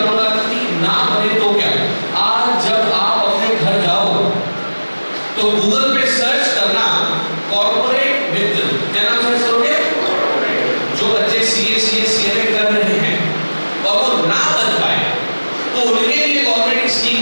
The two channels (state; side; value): inverted; both; correlation -1.00